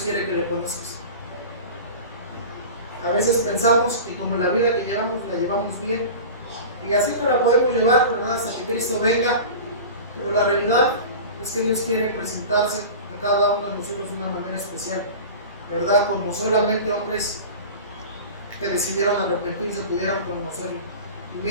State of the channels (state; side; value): inverted; both; correlation -0.34